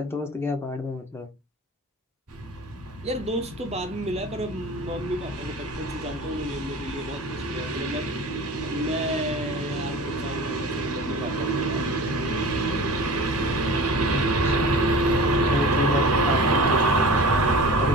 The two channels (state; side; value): normal; both; correlation 0.37